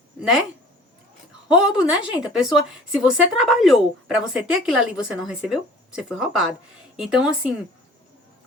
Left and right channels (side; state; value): both; normal; correlation 0.48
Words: né? Roubo, né, gente? A pessoa, se você trabalhou para você ter aquilo ali e você não recebeu, você foi roubado. Então, assim,